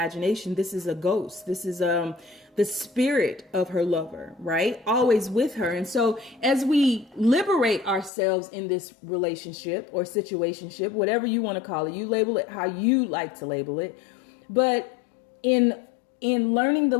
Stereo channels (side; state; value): right; drops out; at 8.1 s